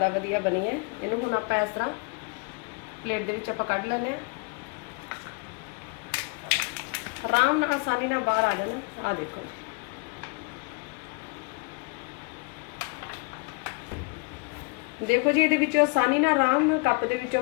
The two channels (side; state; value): right; quieter; 31.4 dB